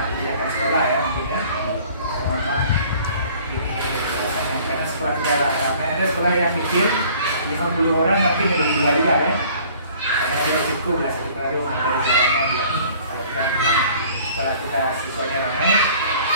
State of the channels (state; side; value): inverted; both; correlation -0.52